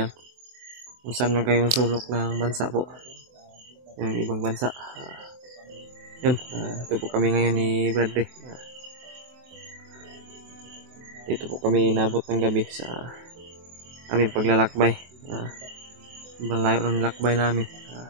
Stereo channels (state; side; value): late; left; 24 ms